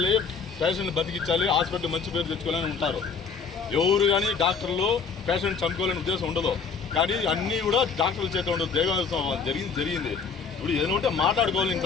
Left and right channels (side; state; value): right; quieter; 5.5 dB